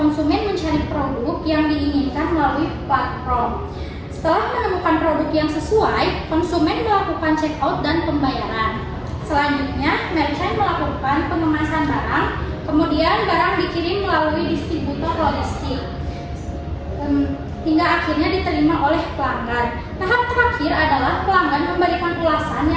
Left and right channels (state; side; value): identical; both; correlation 1.00